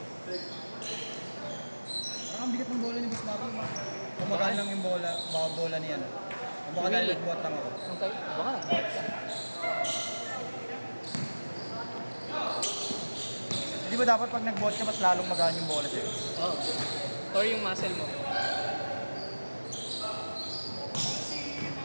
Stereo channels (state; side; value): inverted; both; correlation -1.00